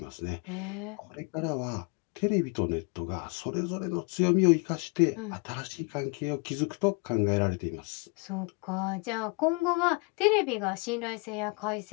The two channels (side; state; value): right; quieter; 32.9 dB